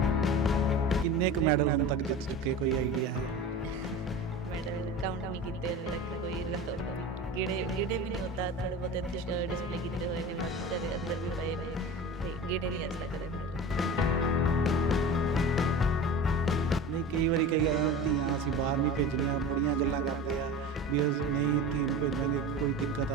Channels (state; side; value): normal; both; correlation 0.33